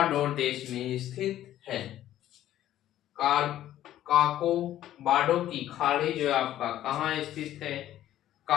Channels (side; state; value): right; quieter; 12.7 dB